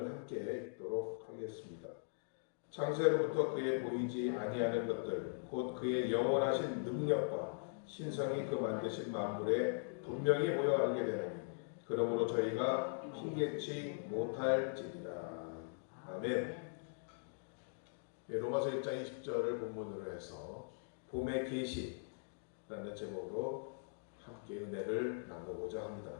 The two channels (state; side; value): silent; right; digital silence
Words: 함께 읽도록 하겠습니다. 창세로부터 그의 보이지 아니하는 것들 곧 그의 영원하신 능력과 신성이 그 만드신 만물에 분명히 보여 알게 되나니 그러므로 저희가 힘겹지 못할지니라. 아멘. 로마서 1장 20절을 본문으로 해서 봄의 계시라는 제목으로 함께 은혜를 나누고자